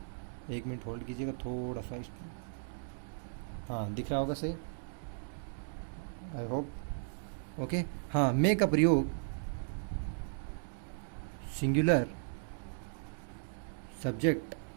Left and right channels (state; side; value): silent; left; digital silence